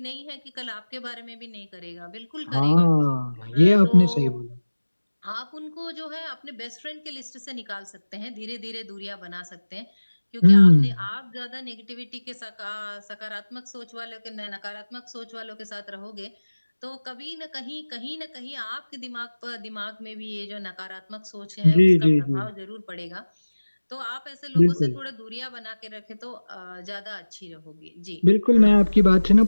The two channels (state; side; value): inverted; both; correlation -1.00